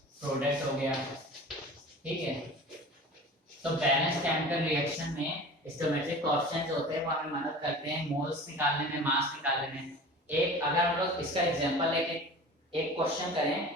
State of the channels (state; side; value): normal; both; correlation 0.38